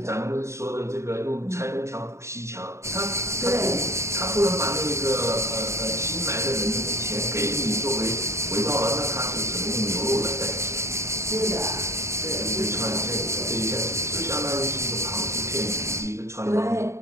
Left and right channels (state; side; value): late; left; 0.14 ms